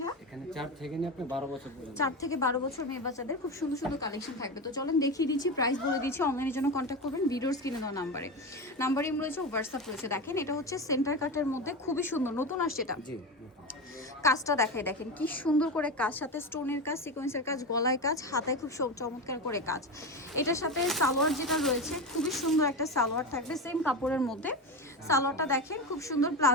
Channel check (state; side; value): normal; both; correlation 0.20